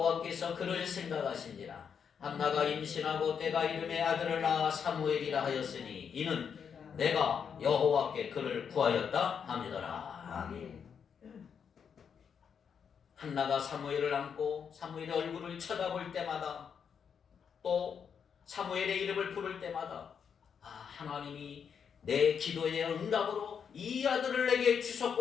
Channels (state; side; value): quieter; right; 7.1 dB